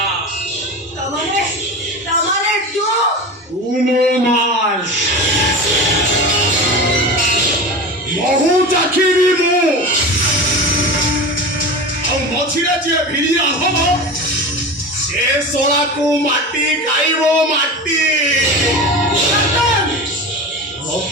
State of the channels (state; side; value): normal; both; correlation 0.29